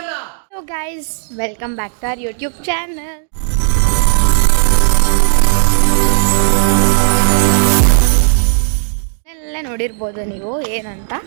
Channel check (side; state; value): left; silent; digital silence